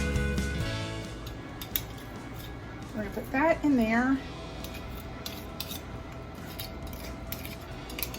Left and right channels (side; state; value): both; identical; correlation 1.00